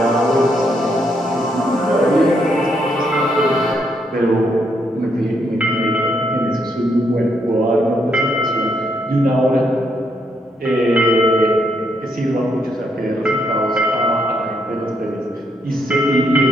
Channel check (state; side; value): normal; both; correlation 0.75